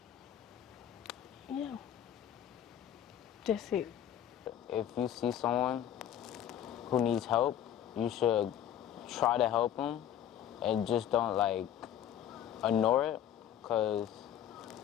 Yeah, that's it. If you see someone who needs help, you should try to help them and just don't ignore it, because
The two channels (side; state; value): right; quieter; 10.4 dB